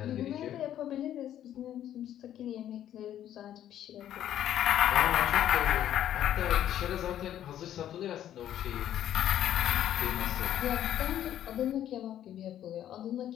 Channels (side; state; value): right; quieter; 11.3 dB